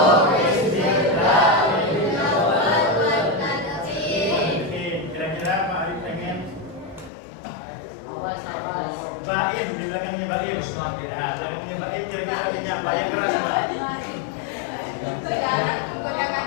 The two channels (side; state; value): right; drops out; at 7.1 s